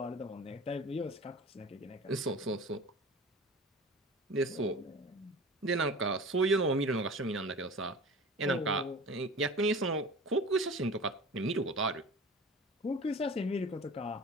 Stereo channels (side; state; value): both; normal; correlation 0.38